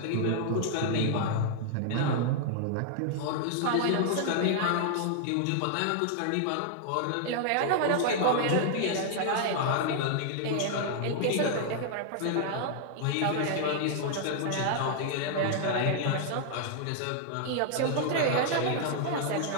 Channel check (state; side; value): different; both; correlation -0.01